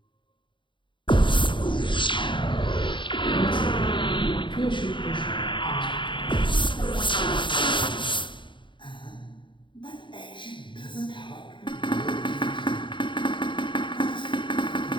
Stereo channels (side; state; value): right; late; 0.23 ms